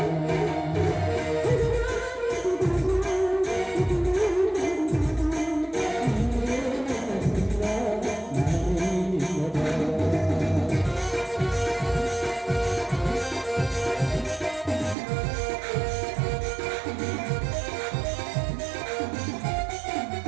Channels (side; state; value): left; drops out; at 15.0 s